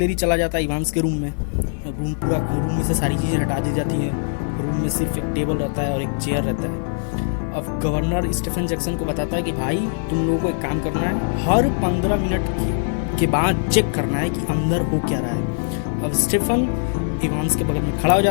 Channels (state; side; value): silent; right; digital silence